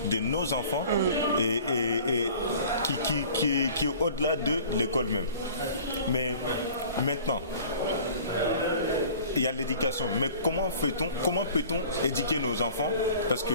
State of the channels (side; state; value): both; inverted; correlation -0.46